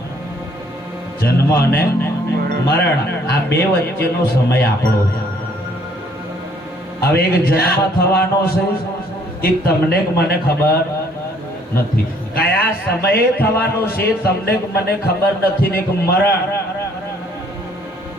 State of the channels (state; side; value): normal; both; correlation 0.62